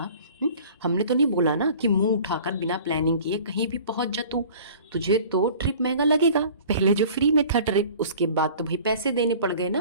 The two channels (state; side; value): inverted; both; correlation -0.46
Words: हमने तो नहीं बोला ना कि मुंह उठाकर बिना प्लानिंग किए कहीं भी पहुंच जा तू। तुझे तो ट्रिप महंगा लगेगा। पहले जो फ्री में था ट्रिप, उसके बाद तो भाई पैसे देने पड़ गए